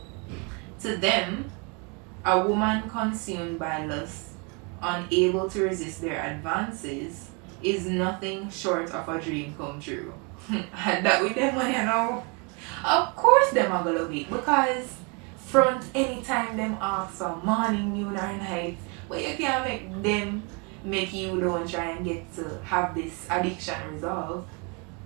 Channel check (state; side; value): quieter; left; 33.0 dB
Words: To them, a woman consumed by lust, unable to resist their advances, is nothing short of a dream come true. And that with them when you know. Of course them are gonna love it because front anytime them ask for morning, noon or night, but you can't make them make you don't try and get to have this addiction resolved.